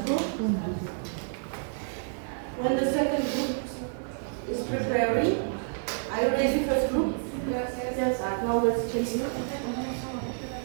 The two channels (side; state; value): left; silent; 58 dB below the other